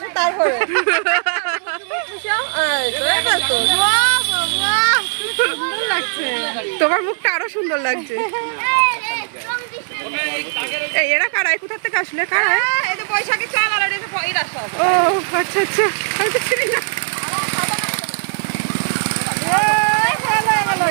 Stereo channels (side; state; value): left; silent; digital silence